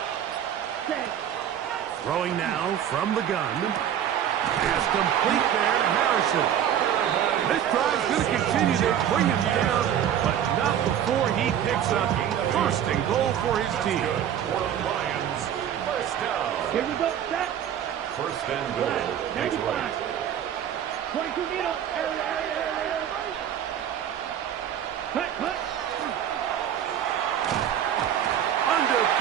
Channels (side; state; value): left; quieter; 9.9 dB